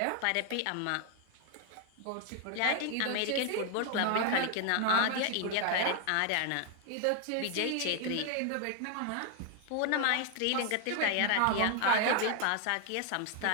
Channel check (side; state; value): both; different; correlation 0.01